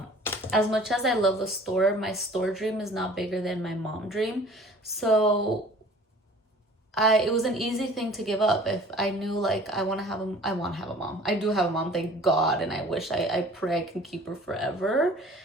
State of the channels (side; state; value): both; normal; correlation 0.48